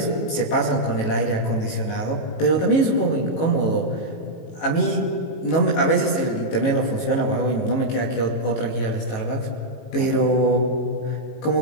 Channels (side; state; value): right; late; 18 ms